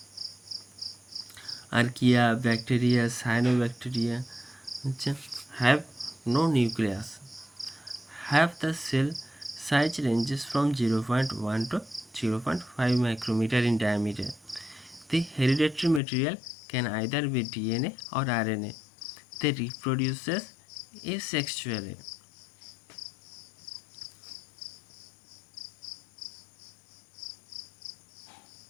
archaea, bacteria, cyanobacteria, which have no nucleus. Have the cell size ranges from 0.1 to 0.5 micrometer in diameter. The hereditary material can either be DNA or RNA. They reproduce asexually.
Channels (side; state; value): right; drops out; at 16.0 s